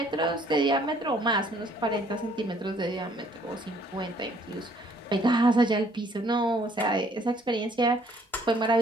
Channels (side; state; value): both; normal; correlation 0.61